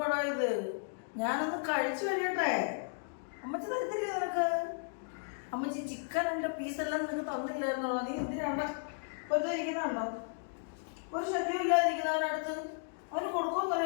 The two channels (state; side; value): silent; right; digital silence